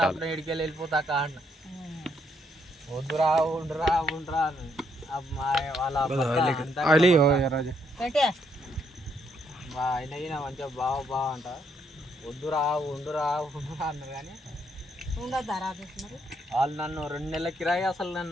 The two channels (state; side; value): normal; both; correlation 0.73